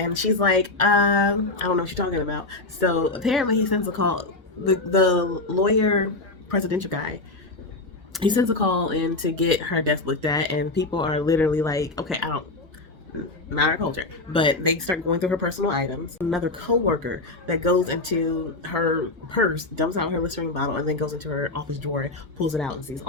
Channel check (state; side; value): quieter; right; 3.1 dB